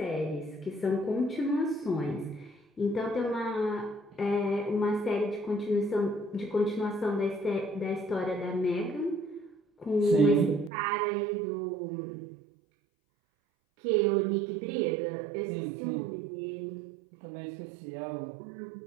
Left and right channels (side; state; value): left; drops out; at 10.7 s